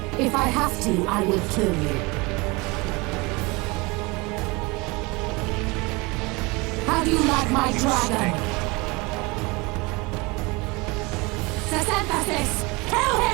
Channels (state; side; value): quieter; left; 25.5 dB